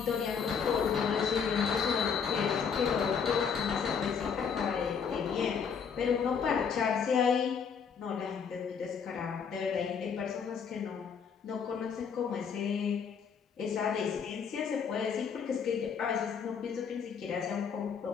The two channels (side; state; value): right; quieter; 6.6 dB